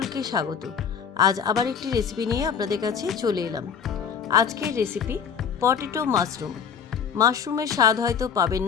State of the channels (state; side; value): quieter; right; 7.0 dB